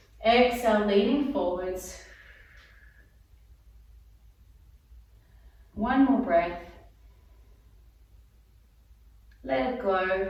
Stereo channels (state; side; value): identical; both; correlation 1.00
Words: Exhale, leaning forwards. One more breath. Let it go.